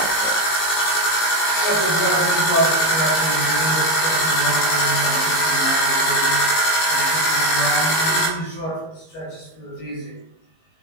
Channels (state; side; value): late; right; 19 ms